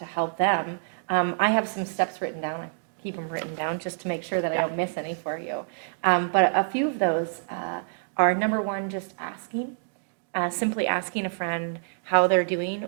help them, I have some steps written down. I keep them written down just to make sure that I don't miss any for you. But a few of those are, number one, just asking. Simply asking a friend how they're doing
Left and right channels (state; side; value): silent; left; digital silence